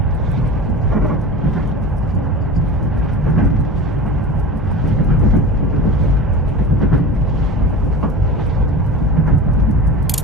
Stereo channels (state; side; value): normal; both; correlation 0.34